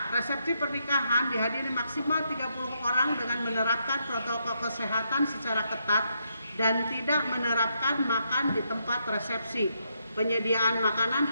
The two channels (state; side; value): inverted; both; correlation -0.78